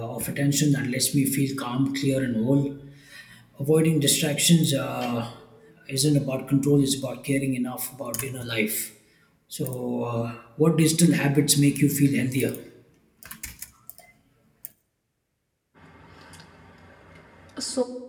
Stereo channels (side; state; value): both; identical; correlation 1.00